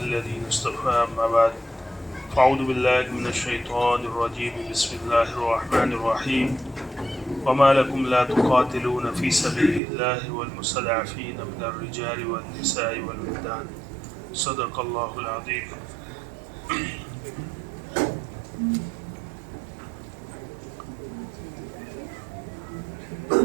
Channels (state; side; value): drops out; left; at 9.8 s